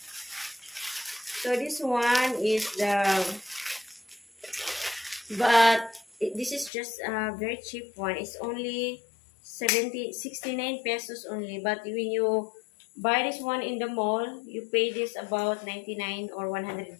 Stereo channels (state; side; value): drops out; right; at 6.7 s